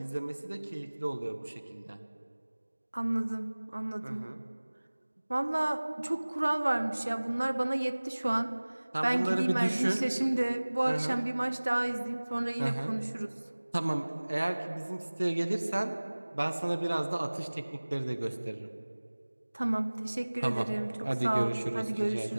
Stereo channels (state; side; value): inverted; both; correlation -1.00